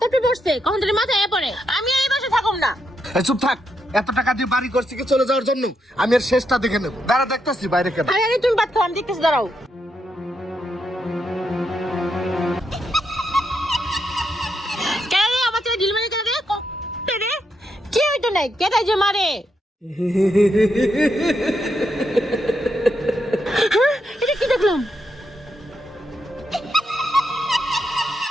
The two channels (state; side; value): normal; both; correlation 0.81